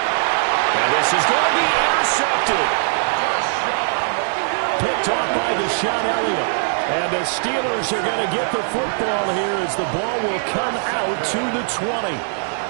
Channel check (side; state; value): left; silent; digital silence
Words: this is going to be intercepted. Picked off by Deshaun Elliott. And the Steelers are going to get the football here as the ball will come out to the 20.